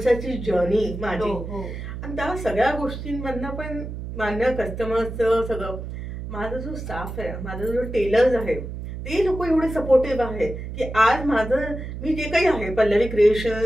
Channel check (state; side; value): noise; right; hum, 8 dB below the sound